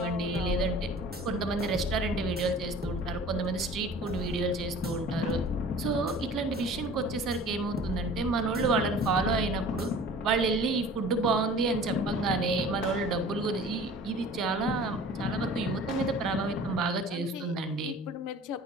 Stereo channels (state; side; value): normal; both; correlation 0.45